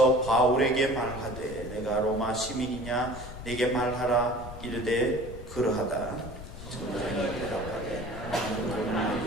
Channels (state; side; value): noise; left; rumble, 11 dB below the sound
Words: 바울에게 말하되 내가 로마 시민이냐 내게 말하라. 이르되 그러하다. 천부장이 대답하되 나는